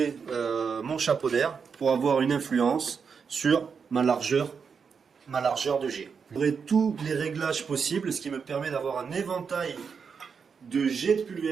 mon chapeau d'air pour avoir une influence sur ma largeur de jet. J'aurai tous les réglages possibles, ce qui me permet d'avoir un éventail de jets de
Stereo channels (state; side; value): quieter; left; 6.0 dB